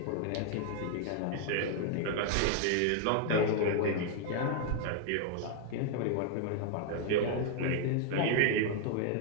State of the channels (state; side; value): different; both; correlation 0.00